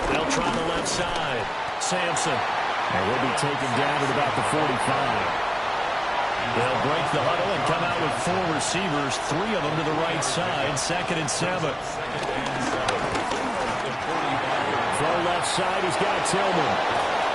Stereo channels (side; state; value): both; identical; correlation 1.00